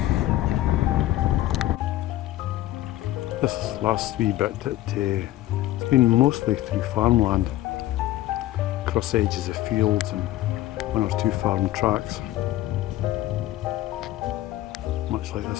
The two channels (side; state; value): right; quieter; 15.0 dB